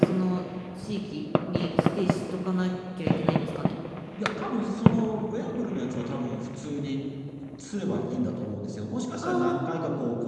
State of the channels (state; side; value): identical; both; correlation 1.00